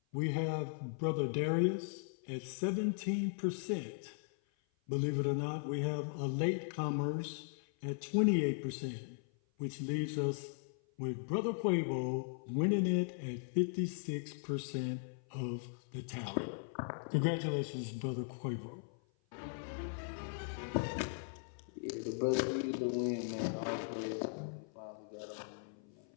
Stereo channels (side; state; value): right; silent; 52 dB below the other